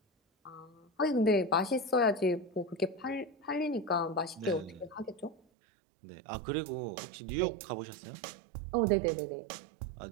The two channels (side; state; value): left; drops out; at 5.4 s